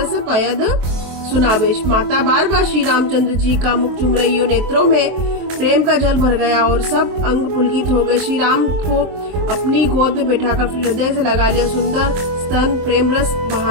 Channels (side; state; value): left; late; 23 ms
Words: पयद सुनावेश। माता बार बार श्री रामचंद्र जी का मुख चुम रही हो। नेत्रों में प्रेम का जल भर गया और सब अंग पुलकित हो गए। श्री राम को अपनी गोद में बैठाकर हृदय से लगा लिया। सुंदर स्तन प्रेम रस